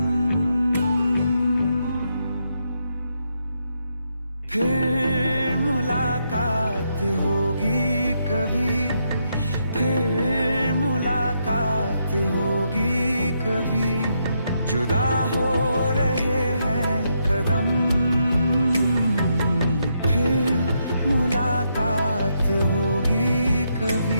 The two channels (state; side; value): inverted; both; correlation -0.79